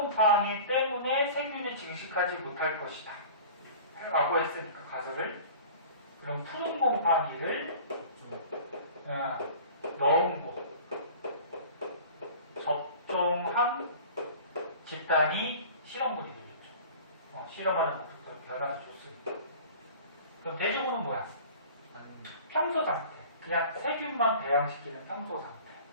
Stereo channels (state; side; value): inverted; both; correlation -0.42